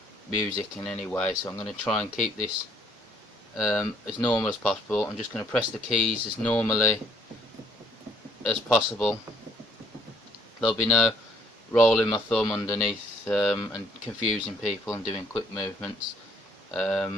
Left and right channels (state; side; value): normal; both; correlation 0.64